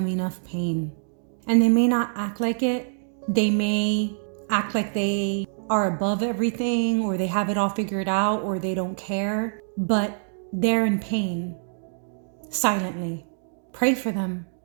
enough pain. And they may not act like it. They may act like they are above everything, or they have it all figured out, or they don't care. But they're in pain, silently. Pray for them.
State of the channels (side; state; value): left; silent; digital silence